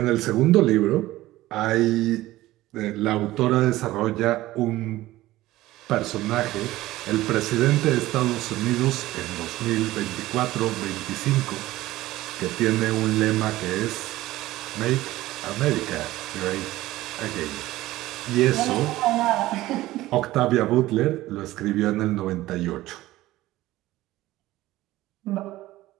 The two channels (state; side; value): quieter; left; 16.7 dB